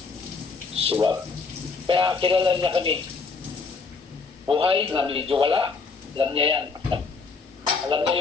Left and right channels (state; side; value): quieter; right; 4.7 dB